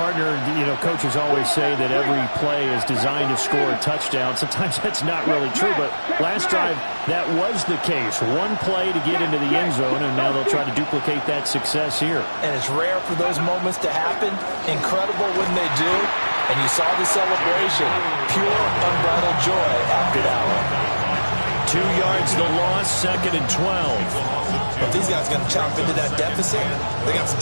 coaches always say that every play is designed to score a touchdown. Sometimes that's not really true, but last drive, that was the case. One play to get into the end zone, and now they'll try to duplicate that success here. And it's rare for those moments to happen. Incredible when they do. And you saw the celebration. Pure, unbridled joy after that one. 2 yards the loss, 2nd and 12. If these guys are going to chop into that deficit, they got to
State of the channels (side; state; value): both; inverted; correlation -1.00